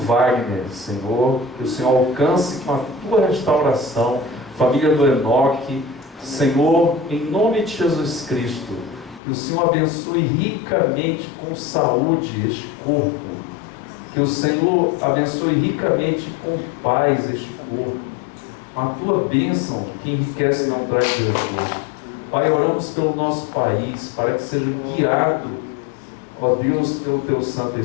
Senhor, que o Senhor alcance com a tua restauração, família do Enoque, Senhor, em nome de Jesus Cristo, que o Senhor abençoe ricamente com saúde este corpo, que o Senhor abençoe ricamente com paz este corpo, com a tua bênção que enriquece e não traz desgosto. Pai, oramos pelo nosso país, para que seja guiado, ó Deus, pelo teu Santo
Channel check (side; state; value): right; drops out; at 9.2 s